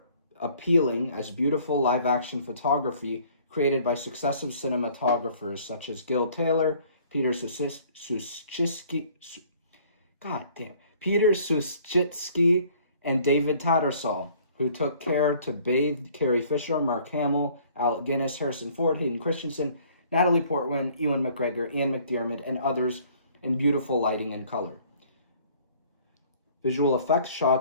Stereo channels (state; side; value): inverted; both; correlation -0.57